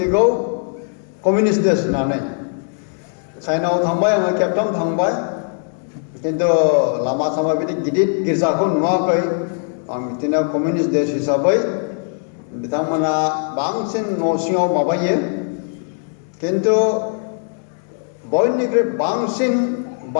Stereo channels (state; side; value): silent; right; 62 dB below the other